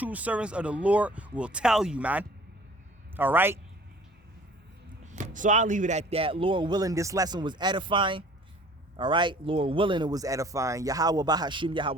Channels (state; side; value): normal; both; correlation 0.50